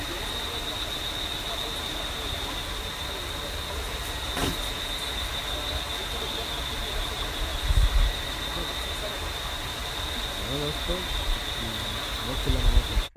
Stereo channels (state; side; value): identical; both; correlation 1.00